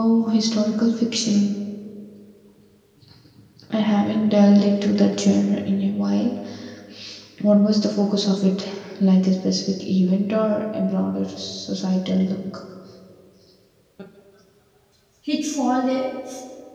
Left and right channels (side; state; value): both; identical; correlation 1.00